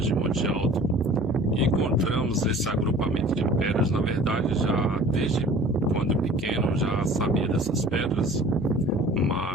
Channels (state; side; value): normal; both; correlation 0.46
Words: de Monte Alto, e encontramos esse agrupamento de pedras. Na verdade, já desde quando pequeno já sabia dessas pedras,